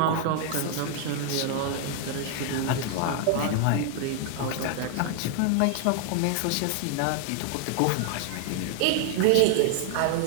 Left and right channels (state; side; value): different; both; correlation 0.00